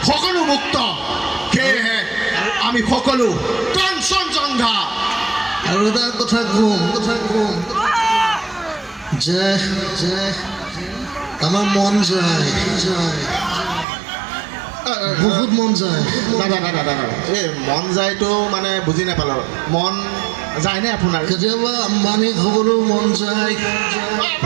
সকলো মুক্ত সেয়েহে আমি সকলো কাঞ্চনজংঘা আৰু এটা কথা কম যে আমাৰ মন যায় বহুত মন যায় দাদা এই মন যায়তো মানে বুজি নাপালোঁ মন যায়নে আপোনাৰ কেতিয়াবা আম্বানীক হ'বলৈও মন যায়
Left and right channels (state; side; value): drops out; left; at 13.9 s